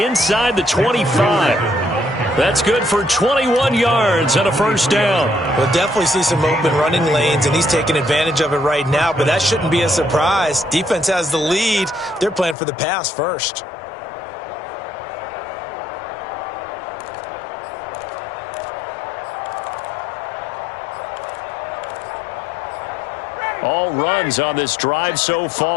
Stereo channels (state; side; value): drops out; right; at 12.6 s